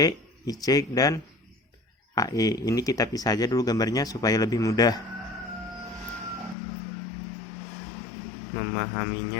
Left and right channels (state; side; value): drops out; right; at 6.6 s